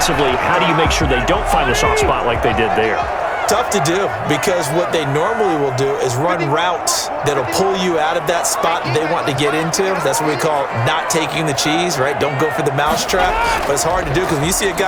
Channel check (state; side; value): identical; both; correlation 1.00